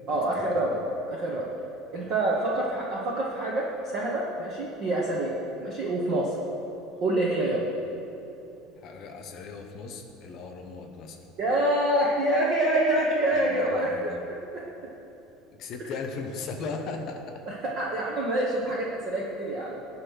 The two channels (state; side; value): normal; both; correlation 0.39